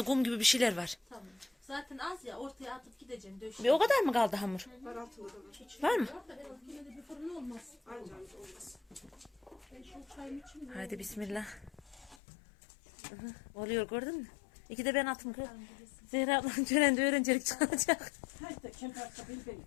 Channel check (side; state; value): right; drops out; at 12.2 s